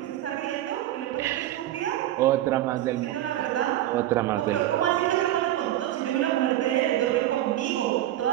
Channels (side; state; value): left; quieter; 13.8 dB